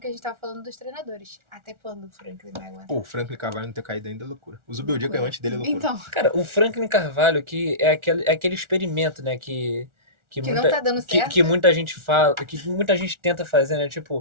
a gente tava falando dos treinadores. Até quando o Franklin vai aguentar? Pô, o Franklin Carvalho não ter caído ainda é loucura. O Zubeldia caiu antes dele é loucura. Então, Cara, o Franklin Carvalho, que é aquele experimento, né, que Que muita, não tá dando certo. que muita gente fala, que muita gente tenta fazer, né,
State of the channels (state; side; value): late; left; 1.4 ms